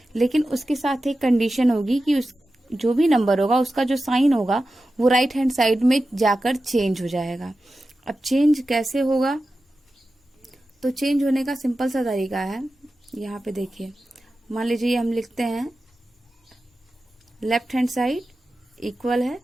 लेकिन उसके साथ एक कंडीशन होगी कि उस जो भी नंबर होगा उसका जो साइन होगा वो राइट हैंड साइड में जाकर चेंज हो जाएगा। अब चेंज कैसे होगा, तो चेंज होने का सिंपल सा तरीका है। यहाँ पे देखिए, मान लीजिए हम लिखते हैं लेफ्ट हैंड साइड इक्वल है,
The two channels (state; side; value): normal; both; correlation 0.93